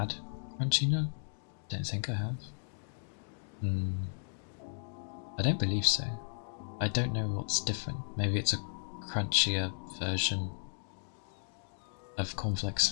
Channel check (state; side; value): silent; right; digital silence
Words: Crunchy Nut. Don't think I have. I don't believe so. I don't know what's different. Maybe it's a crunchier version of cornflakes.